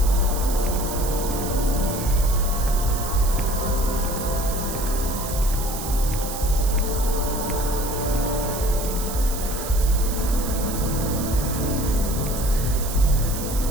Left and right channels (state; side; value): noise; right; hiss, 8 dB below the sound